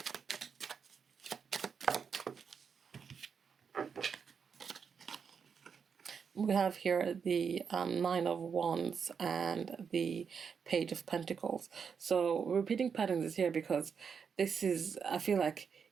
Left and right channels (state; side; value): quieter; left; 6.4 dB